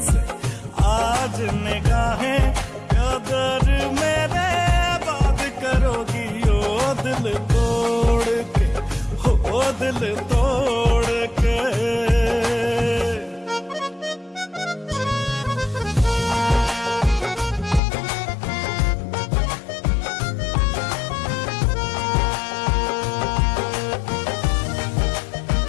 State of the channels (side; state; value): right; drops out; at 17.8 s